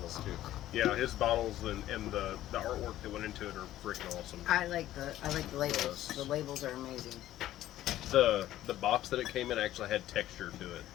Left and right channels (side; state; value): right; quieter; 13.7 dB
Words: too. Yeah, his bottles and the artwork that went into it are freaking awesome. I like the labels. Yes. The labels are amazing. The box that it came in actually had texture to it